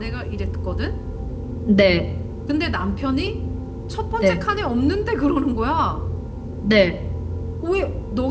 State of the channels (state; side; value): identical; both; correlation 1.00